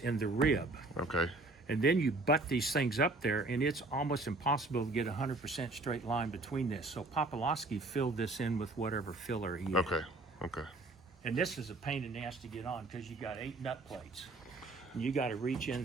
and the rib. Okay. And then you butt these things up there, and it's almost impossible to get 100% straight line between this. So Popolowski filled this in with whatever filler he had. Okay. Okay. And this is a pain in the ass to get on because you got 8 nut plates. And you got to reach in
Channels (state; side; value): quieter; left; 3.1 dB